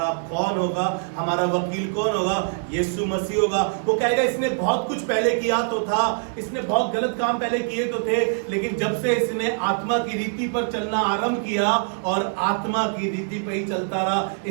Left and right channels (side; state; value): left; silent; 60 dB below the other